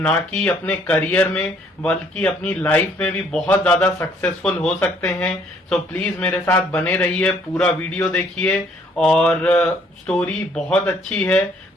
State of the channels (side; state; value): both; normal; correlation 0.63